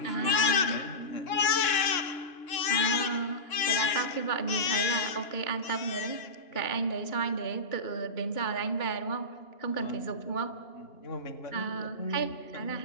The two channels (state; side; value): late; right; 2.9 ms